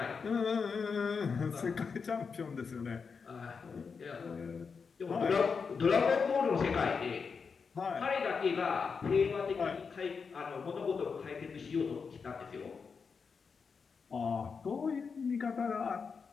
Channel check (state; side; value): quieter; right; 5.5 dB